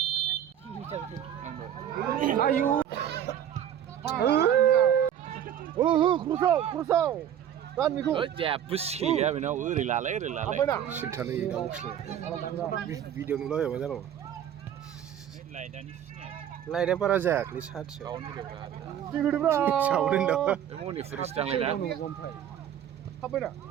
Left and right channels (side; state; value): left; quieter; 10.0 dB